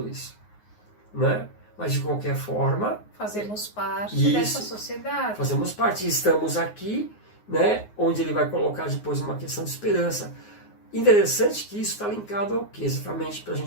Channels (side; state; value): right; late; 9.5 ms